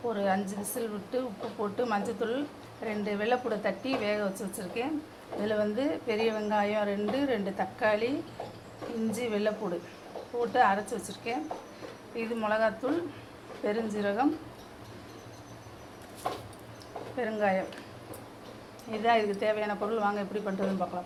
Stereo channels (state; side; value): identical; both; correlation 1.00